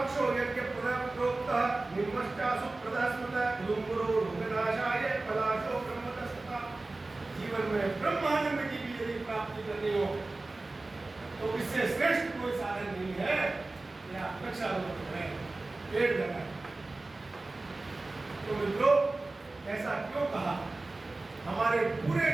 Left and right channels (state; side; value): quieter; left; 3.2 dB